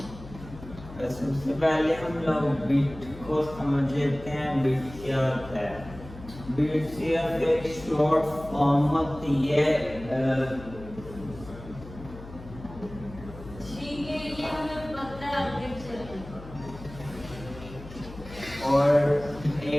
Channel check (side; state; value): left; noise; hum, 15 dB below the sound